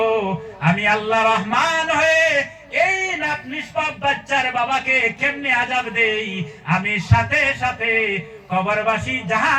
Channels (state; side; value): identical; both; correlation 1.00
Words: আমি আল্লাহ রহমান হয়ে এই নিষ্পাপ বাচ্চার বাবাকে কেমনে আযাব দেই, আমি সাথে সাথে কবরবাসী